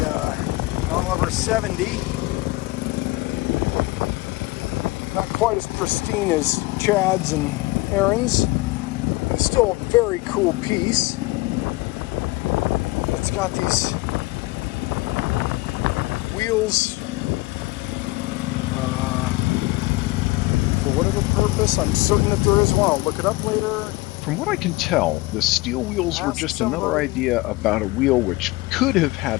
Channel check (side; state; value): right; quieter; 21.5 dB